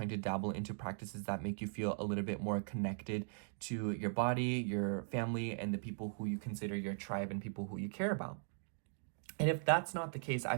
to dabble into practices that make you feel a little bit more connected to your body, your family, and the people who you consider your tribe and people who you care about. And if that's not the case, I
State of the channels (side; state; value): left; silent; digital silence